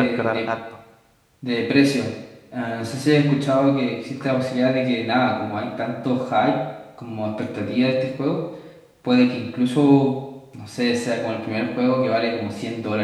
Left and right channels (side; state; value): both; identical; correlation 1.00